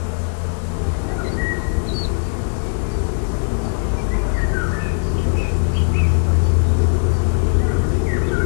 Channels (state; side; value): silent; right; digital silence